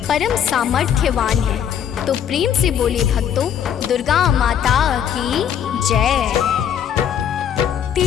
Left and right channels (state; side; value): quieter; right; 9.0 dB